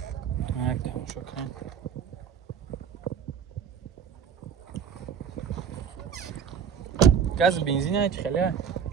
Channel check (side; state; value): left; quieter; 7.5 dB